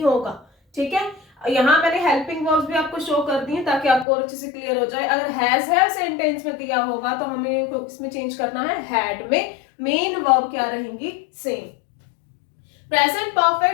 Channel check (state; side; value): drops out; right; at 4.0 s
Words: होगा। ठीक है, यहाँ मैंने हेल्पिंग वर्ब्स भी आपको शो कर दी है ताकि आपको और अच्छे से क्लियर हो जाए। अगर हैज सेंटेंस में दिया होगा तो हमें इसमें चेंज करना है हैड में। मेन वर्ब क्या रहेंगी, same. Present